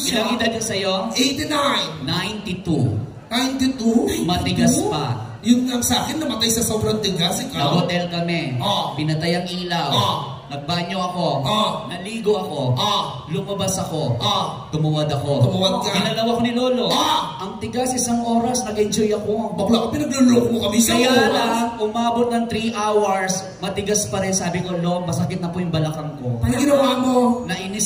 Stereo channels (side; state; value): both; identical; correlation 1.00